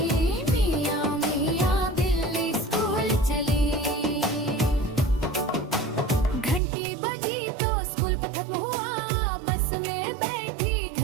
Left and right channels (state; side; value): drops out; left; at 6.6 s